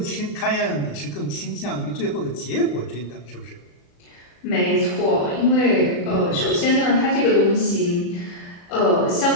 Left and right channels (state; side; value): late; right; 35 ms